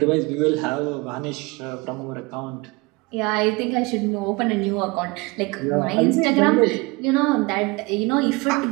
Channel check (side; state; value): left; quieter; 25.2 dB